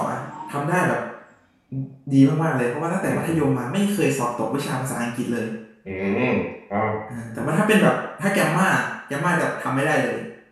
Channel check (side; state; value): both; identical; correlation 1.00